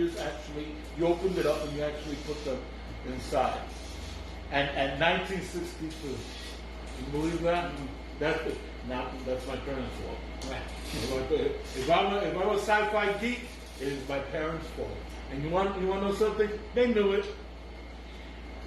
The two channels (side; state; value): both; identical; correlation 1.00